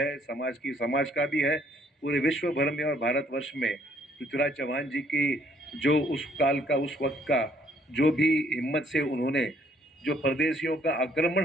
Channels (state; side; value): normal; both; correlation 0.65